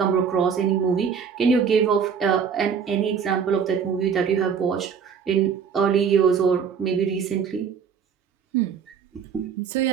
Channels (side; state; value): left; quieter; 6.8 dB